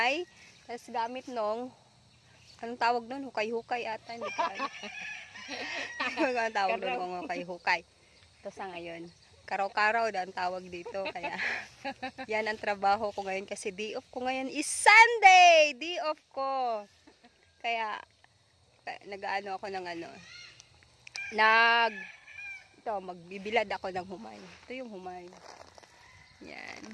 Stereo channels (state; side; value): identical; both; correlation 1.00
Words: Tapos gamit nung, anong tawag nun? Hukay-hukay ata. Hindi ka ang tawag doon kung hukay-hukay. Ito sa ngayon. Karaw-karaw na ang tawag dito. Kaya, yan ang trabaho ko ngayon. Kasi day off ko ngayon is Sunday! Day off ko. Kaya, nag-ano ako ng magbibilad ako ng humay. Ito yung humay. Yan.